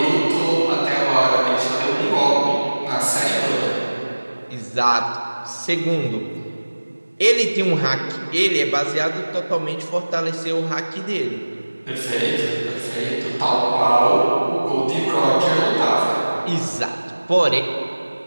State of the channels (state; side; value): inverted; both; correlation -1.00